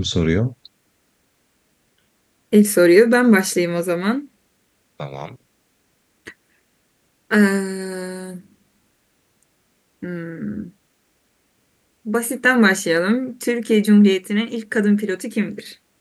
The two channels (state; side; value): identical; both; correlation 1.00